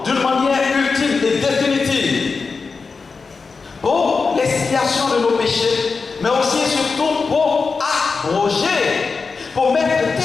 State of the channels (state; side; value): quieter; right; 4.6 dB